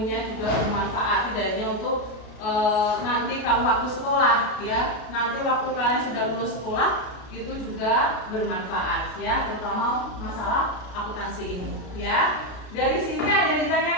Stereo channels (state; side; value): late; right; 33 ms